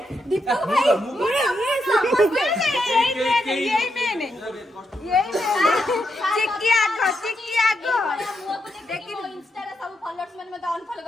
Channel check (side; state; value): both; normal; correlation 0.82